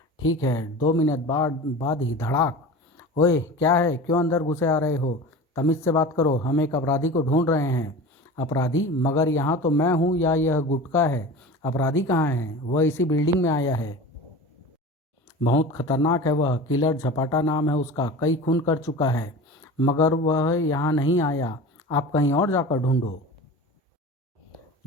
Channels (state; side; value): normal; both; correlation 0.34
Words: ठीक है, 2 मिनट बाद ही धड़ाक। ओए क्या है, क्यों अंदर घुसे आ रहे हो? तमीज़ से बात करो, हम एक अपराधी को ढूंढ रहे हैं। अपराधी? मगर यहाँ तो मैं हूँ या यह गुटका है? अपराधी कहाँ है? वह इसी बिल्डिंग में आया है। बहुत खतरनाक है वह, किलर झपाटा नाम है उसका, कई खून कर चुका है। मगर वह यहाँ नहीं आया, आप कहीं और जाकर ढूंढो।